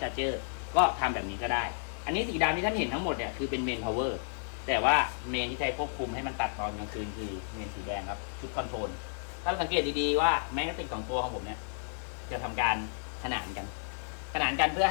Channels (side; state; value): right; silent; digital silence